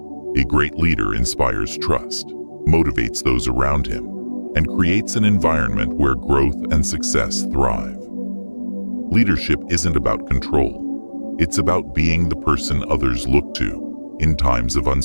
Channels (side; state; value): both; inverted; correlation -1.00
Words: A great leader inspires trust, motivates those around him, and creates an environment where growth and success thrive. Leadership isn't about control. It's about being the person others look to in times of